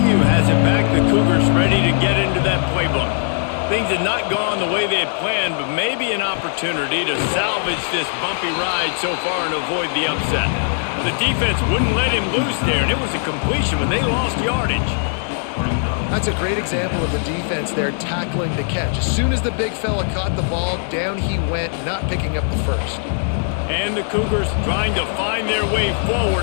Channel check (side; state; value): right; silent; digital silence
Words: has it back. The Cougars ready to get into that playbook. Things had not gone the way they had planned, but maybe an opportunity to salvage this bumpy ride so far and avoid the upset. The defense wouldn't let him loose there, and it was a completion when they lost yardage. That's a great example of the defense there tackling the catch. As soon as the big fella caught the ball, down he went, not picking up the first. And the Cougars trying to find their way